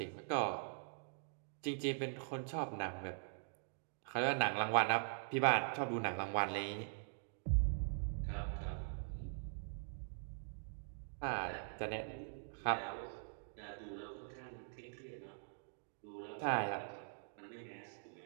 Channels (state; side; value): silent; left; digital silence